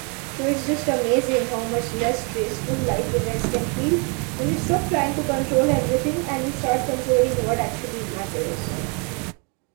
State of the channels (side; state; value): left; quieter; 34.4 dB